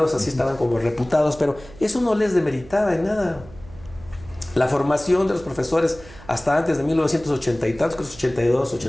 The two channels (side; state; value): right; noise; hum, 20 dB below the sound